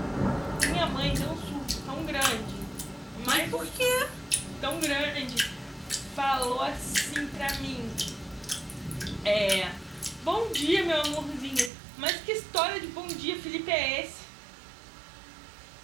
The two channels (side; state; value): left; drops out; at 11.7 s